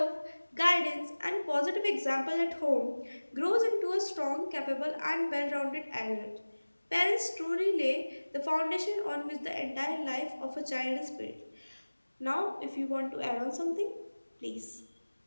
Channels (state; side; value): inverted; both; correlation -1.00